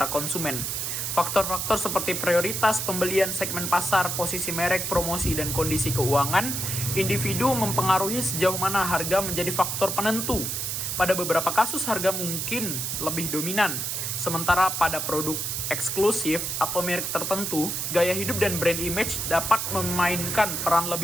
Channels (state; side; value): noise; right; hiss, 2 dB below the sound